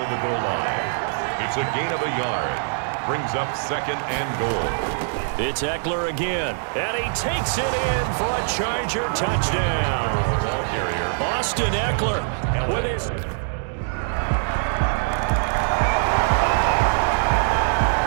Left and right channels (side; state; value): left; silent; digital silence